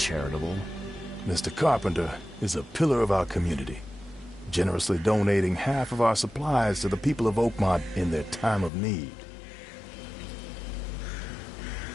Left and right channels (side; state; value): right; drops out; at 8.7 s